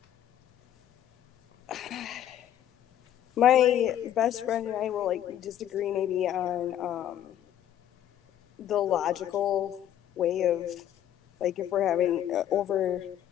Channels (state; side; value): quieter; right; 11.2 dB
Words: My best friend and I will disagree maybe on the logical way of if we're having